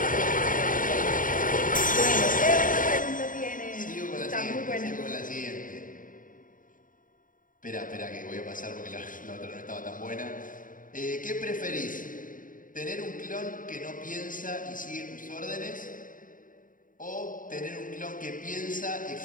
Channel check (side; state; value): right; late; 0.39 ms